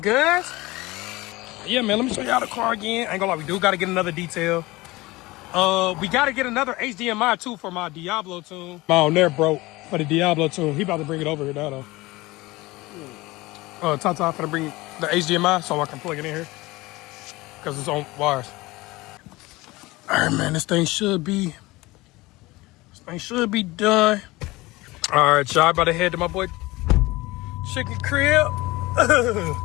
cuz. Yeah, man, let me show y'all the car again. I ain't gonna lie, we do gotta get another detail. We gotta get another HDMI too for my Diablo tune. My on there broke for the Diablo tune. He about to bring it over here now though. Tata finna bring the HDMI so I can plug it in here. Cause it's on wires. Alright, man, this thing should be done. Alright, y'all, about to head to my boy Chicken Crib.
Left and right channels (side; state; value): right; quieter; 20.8 dB